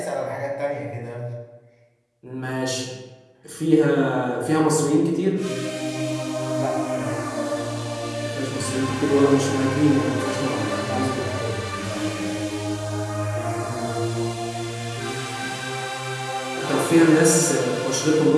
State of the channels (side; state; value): both; identical; correlation 1.00